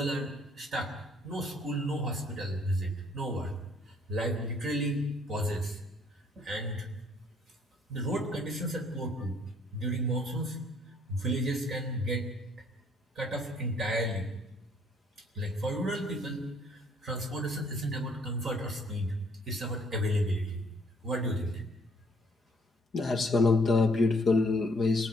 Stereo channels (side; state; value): both; normal; correlation 0.63